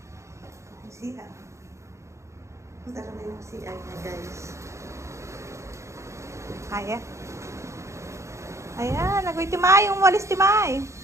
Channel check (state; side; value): late; left; 0.14 ms